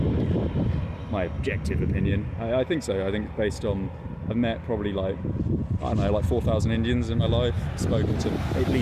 I think so. I think based on, I've met probably like 4,000 Indians in my life, spoken to at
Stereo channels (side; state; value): both; identical; correlation 1.00